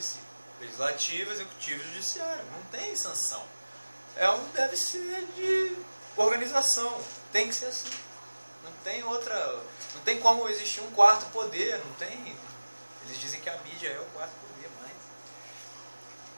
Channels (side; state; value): both; inverted; correlation -1.00